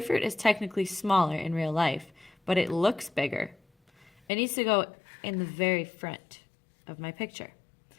is technically smaller in real life, but it looks bigger, it needs to go in the very front of my picture.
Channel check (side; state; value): right; drops out; at 4.1 s